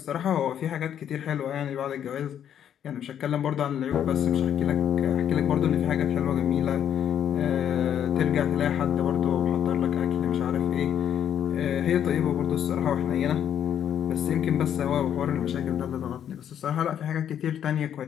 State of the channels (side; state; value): right; quieter; 9.5 dB